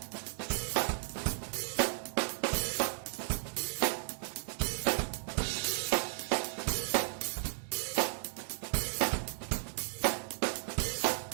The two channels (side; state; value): left; silent; digital silence